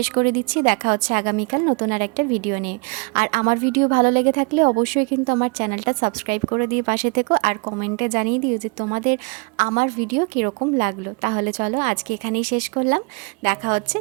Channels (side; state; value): left; quieter; 32.0 dB